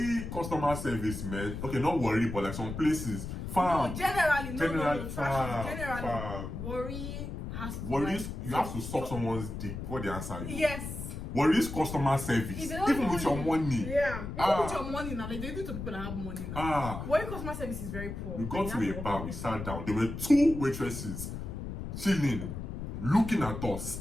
customer service, man. Okay, not worry, but like some places. Farm. No, generally. Farm. Worry has to. Worries, you have to suck someone's dick before they answer you. Yes. Worries customer service. Even with your money. Yeah. Even with your money now. Like they do it to people that have money now. Worry customer service is very poor. We got to a bar, we sat down. There were 2 waitresses chilling, looking at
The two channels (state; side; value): noise; left; rumble, 7 dB below the sound